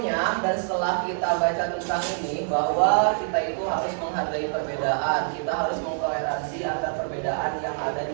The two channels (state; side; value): silent; left; digital silence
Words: dan setelah kita baca tentang ini bahwa kita itu harus menghargai perbedaan, kita harus mengtoleransi antara perbedaan yang ada